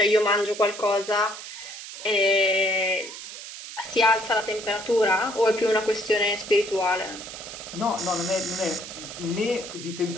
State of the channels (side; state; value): right; noise; hiss, 11 dB below the sound